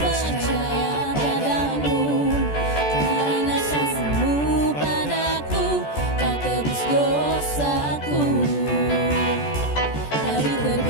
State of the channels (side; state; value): right; late; 14 ms